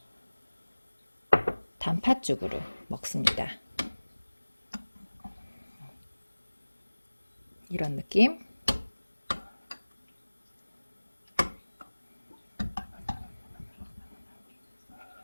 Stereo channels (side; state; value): both; inverted; correlation -1.00